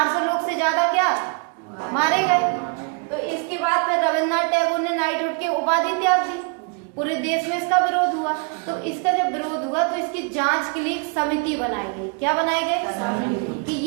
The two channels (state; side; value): quieter; left; 38.1 dB